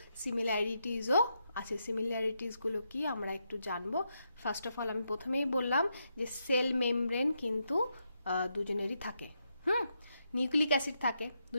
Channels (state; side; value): inverted; both; correlation -0.82